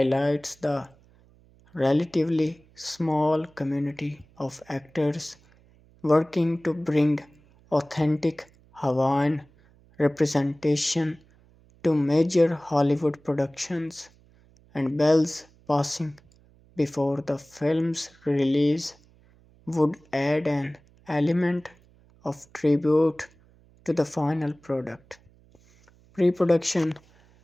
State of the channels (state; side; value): noise; right; hum, 29 dB below the sound